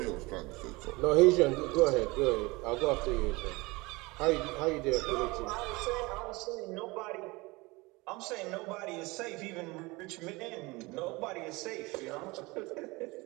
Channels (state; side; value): quieter; left; 23.7 dB